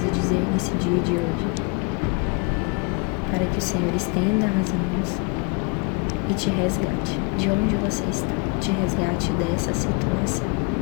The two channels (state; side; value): quieter; right; 30.4 dB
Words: dizer nesse dia de hoje, para que o Senhor estenda as mãos e te resgate de onde você está, te resgate dessa situação.